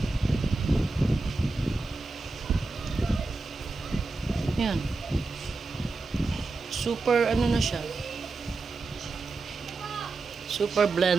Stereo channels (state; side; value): quieter; left; 3.5 dB